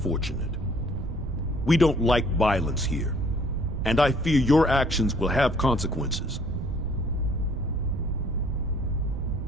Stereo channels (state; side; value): noise; right; rumble, 5 dB below the sound